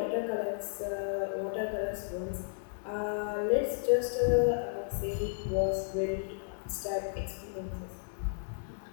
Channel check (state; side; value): silent; right; digital silence